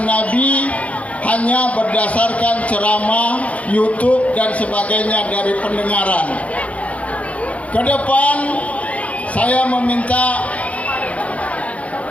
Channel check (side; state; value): right; late; 0.066 ms